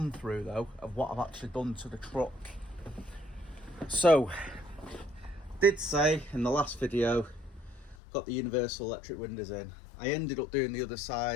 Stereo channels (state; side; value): drops out; right; at 8.0 s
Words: through though of what I've actually done to the truck. So, did say in the last video, got the universal electric windows in. I ended up doing the other